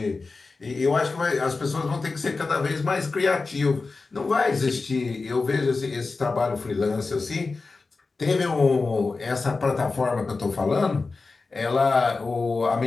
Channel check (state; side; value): quieter; right; 4.0 dB